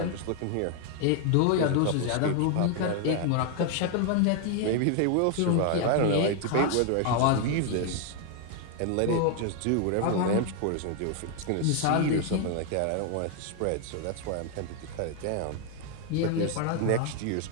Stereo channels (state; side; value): different; both; correlation 0.00